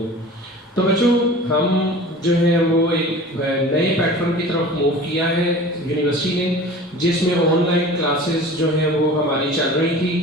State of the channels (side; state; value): both; normal; correlation 0.40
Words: तो बच्चों, हम जो है वो एक नए प्लेटफॉर्म की तरफ मूव किया है यूनिवर्सिटी ने, जिसमें ऑनलाइन क्लासेस जो है वो हमारी चल रही थी